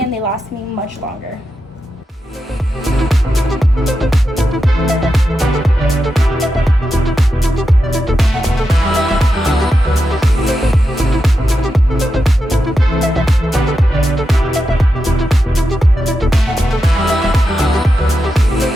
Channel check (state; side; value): normal; both; correlation 0.88